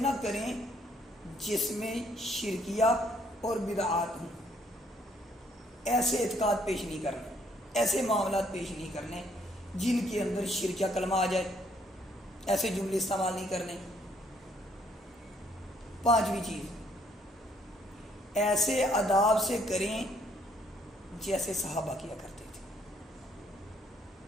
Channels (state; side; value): normal; both; correlation 0.67